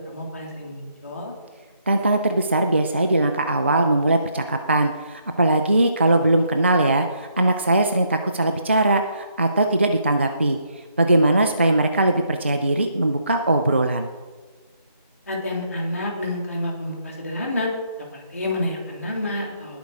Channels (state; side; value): inverted; both; correlation -0.72